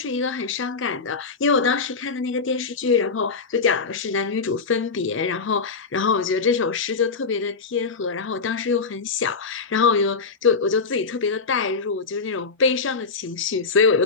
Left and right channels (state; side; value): quieter; right; 4.7 dB